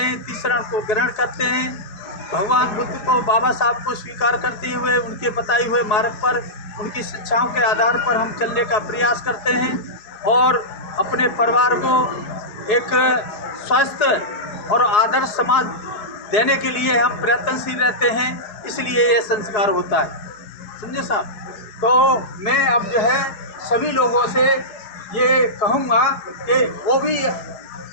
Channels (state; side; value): late; right; 4.7 ms